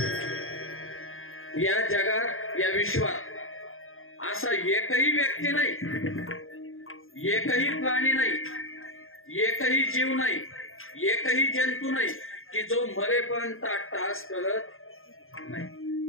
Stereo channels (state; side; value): late; right; 0.60 ms